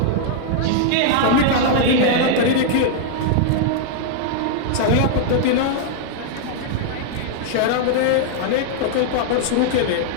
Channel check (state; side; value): different; both; correlation -0.01